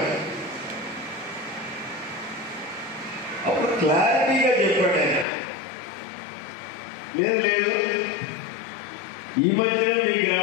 క్లారిటీగా చెప్పాడు ఆయన. లేదు లేదు, ఈ మధ్యనే మీ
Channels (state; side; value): drops out; right; at 5.2 s